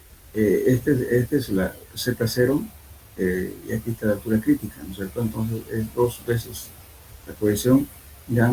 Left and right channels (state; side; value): identical; both; correlation 1.00